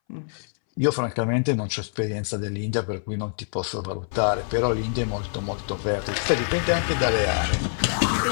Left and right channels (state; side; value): silent; right; 62 dB below the other